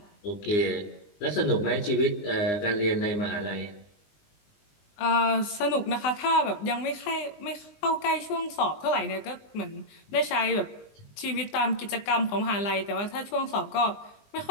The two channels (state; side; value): late; right; 20 ms